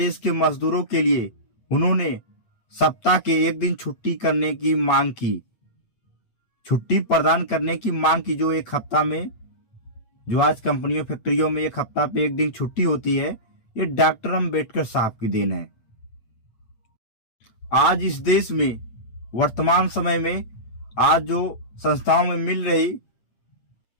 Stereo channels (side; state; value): right; late; 8.6 ms